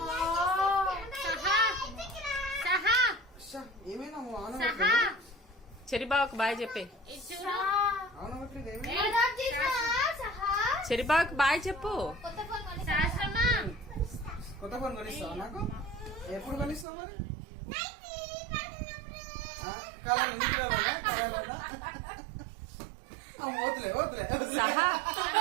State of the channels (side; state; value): left; drops out; at 16.9 s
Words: చెరి బావకి బాయ్ చెప్పే. చెరి బావకి బాయ్ చెప్పు. కొత్త ఫోన్ కొనిస్తావు నాకు? ఎప్పుడు కొనిస్తావు మరి? సహా